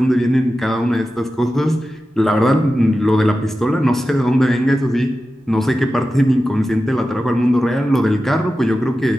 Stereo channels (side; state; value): both; normal; correlation 0.93